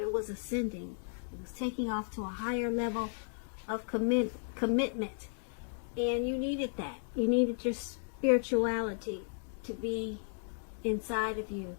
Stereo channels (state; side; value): silent; right; digital silence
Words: was ascending. It was taking off to a higher level of commitment. And you needed that. You needed your spirituality to be inside of you,